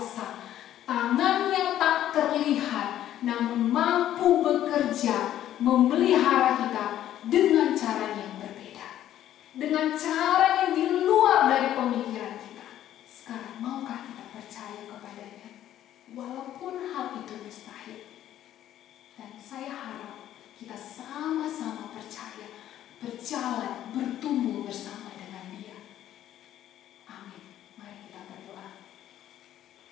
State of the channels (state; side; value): quieter; right; 12.0 dB